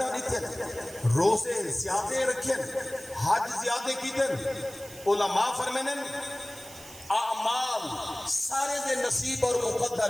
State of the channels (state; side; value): noise; right; hiss, 17 dB below the sound